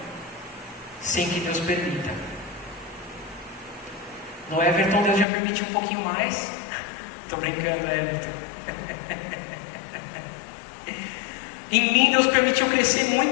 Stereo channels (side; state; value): right; drops out; at 5.2 s